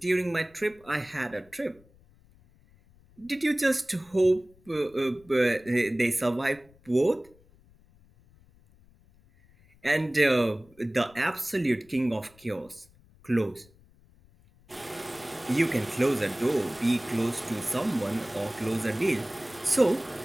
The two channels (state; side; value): noise; left; rumble, 28 dB below the sound